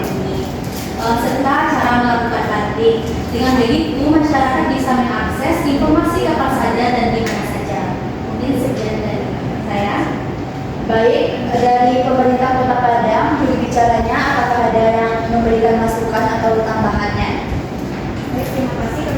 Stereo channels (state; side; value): identical; both; correlation 1.00